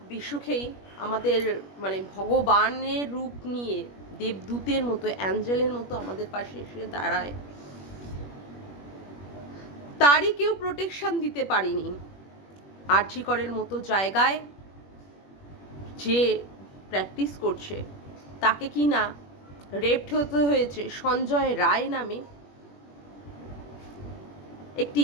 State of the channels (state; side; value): late; right; 21 ms